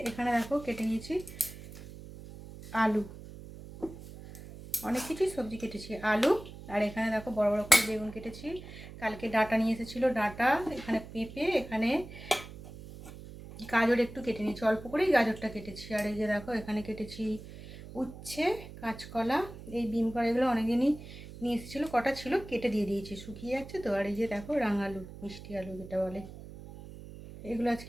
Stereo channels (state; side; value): noise; right; hum, 14 dB below the sound